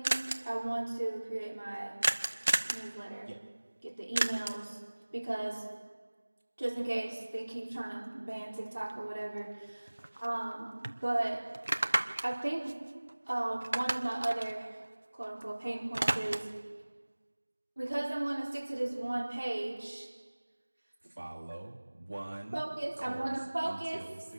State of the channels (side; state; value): both; inverted; correlation -1.00